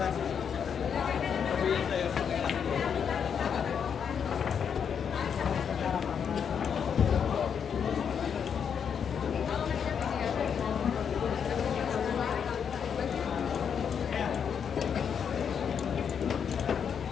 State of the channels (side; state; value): right; quieter; 7.4 dB